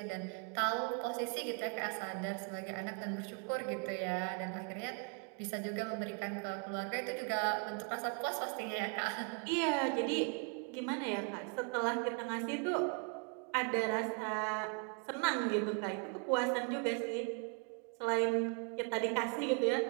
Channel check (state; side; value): quieter; left; 39.0 dB